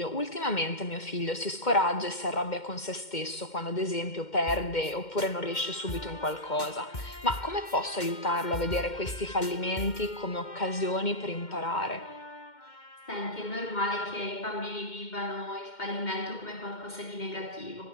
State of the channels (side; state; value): right; late; 2.1 ms